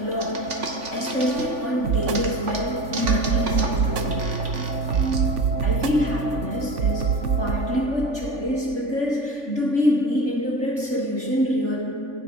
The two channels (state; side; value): late; left; 3.5 ms